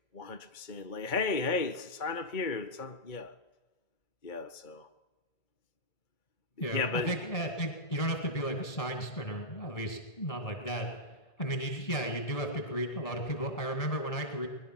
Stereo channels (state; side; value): late; right; 2.2 ms